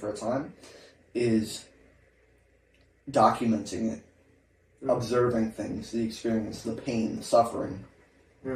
a time, is documenting it, observing things, the experience, the pain, the suffering,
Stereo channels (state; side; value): identical; both; correlation 1.00